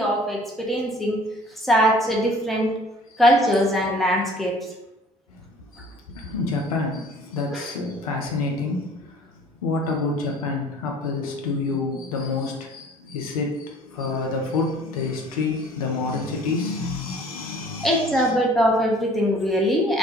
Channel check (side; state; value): both; normal; correlation 0.51